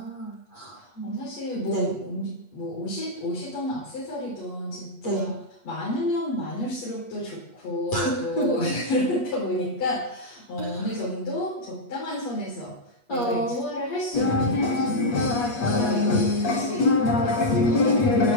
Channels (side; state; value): right; late; 8.3 ms